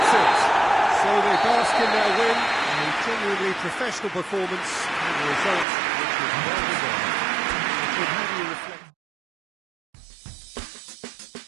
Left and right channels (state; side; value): drops out; left; at 5.7 s